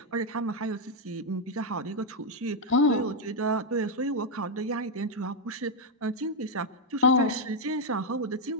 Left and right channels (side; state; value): both; normal; correlation 0.01